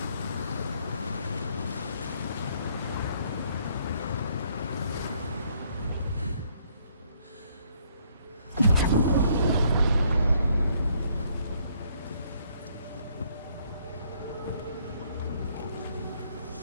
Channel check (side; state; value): both; inverted; correlation -0.67